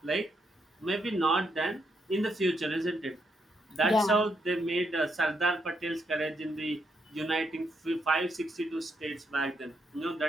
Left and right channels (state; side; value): normal; both; correlation 0.78